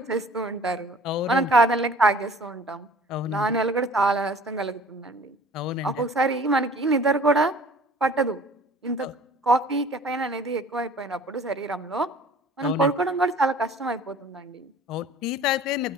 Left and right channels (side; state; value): both; normal; correlation 0.49